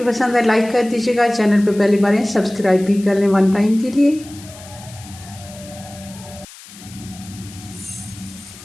पसंद है लाइक कर दीजिएगा, चैनल पे पहली बार हैं सब्सक्राइब भी कर लें वन टाइम के लिए।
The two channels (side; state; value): left; noise; hiss, 19 dB below the sound